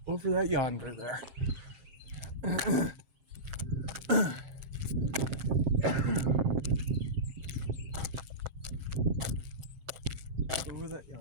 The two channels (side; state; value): left; late; 7.6 ms